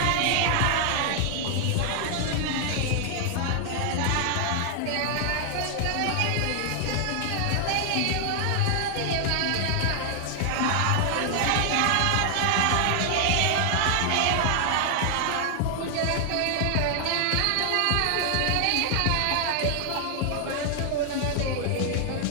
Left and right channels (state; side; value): different; both; correlation 0.00